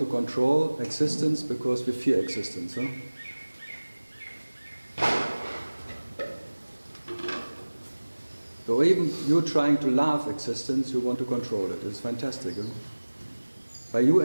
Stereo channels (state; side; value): inverted; both; correlation -1.00